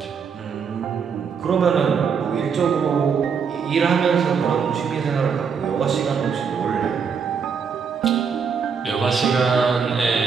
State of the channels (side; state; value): left; quieter; 6.3 dB